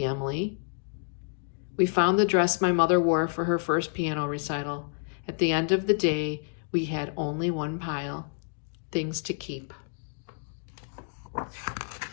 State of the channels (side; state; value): right; silent; digital silence